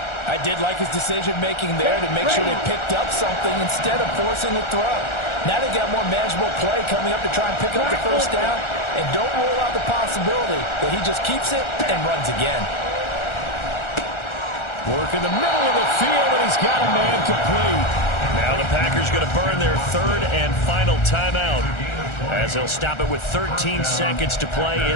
I did like his decision-making there to make sure they picked up something instead of forcing a throw. Now they've got more manageable play coming up to try and pick up the first down, and don't rule out the possibility that he just keeps it and runs again. Work in the middle of the field, and he's got a man complete. Now the Packers going to burn their third and final timeout as they'll stop it with 13 seconds to play in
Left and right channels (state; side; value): late; right; 1.4 ms